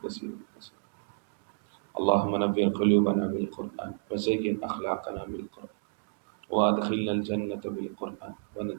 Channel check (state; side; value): silent; left; digital silence